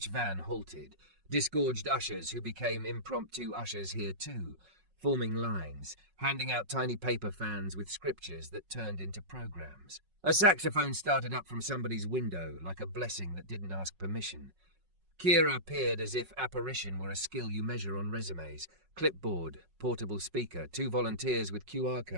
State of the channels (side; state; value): left; late; 5.4 ms